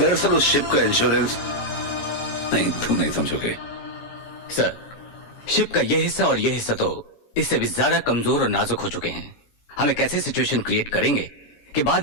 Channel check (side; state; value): right; late; 17 ms